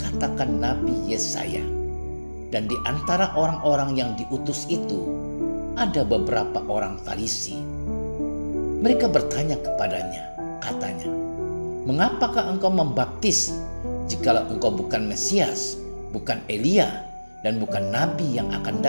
Nabi Yesaya." Dan di antara orang-orang yang diutus itu ada beberapa orang Farisi. Mereka bertanya kepadanya, katanya, "Mengapakah engkau membaptis jikalau engkau bukan Mesias, bukan Elia, dan bukan Nabi yang akan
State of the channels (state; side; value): inverted; both; correlation -1.00